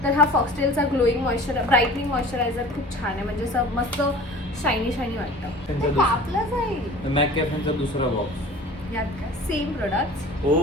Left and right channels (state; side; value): normal; both; correlation 0.43